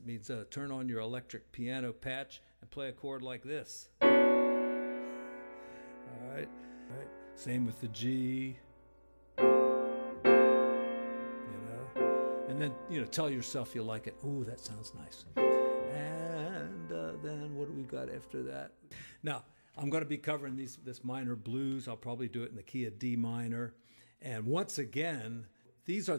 means turn on your electric piano patch and play a chord like this. All right. Same with the G. And then, you know, tell yourself you like it. Ooh, that sounds nice. And then what do we got after that? Now, I'm going to be covering this minor blues. I'll probably do it in the key of D minor. And once again, these are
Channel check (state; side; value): inverted; both; correlation -1.00